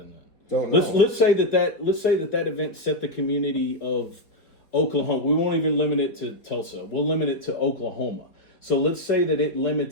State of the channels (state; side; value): late; right; 4.2 ms